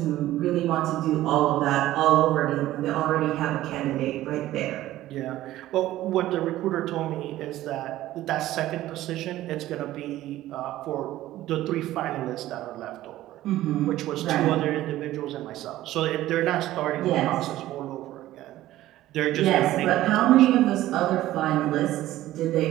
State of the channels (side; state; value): left; quieter; 14.9 dB